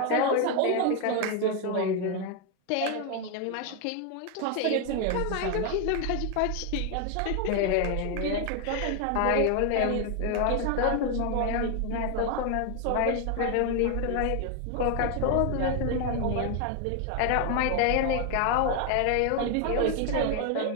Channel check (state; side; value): different; both; correlation 0.01